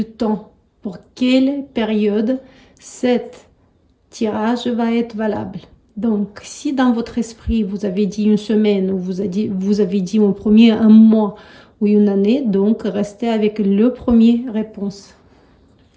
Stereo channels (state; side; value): identical; both; correlation 1.00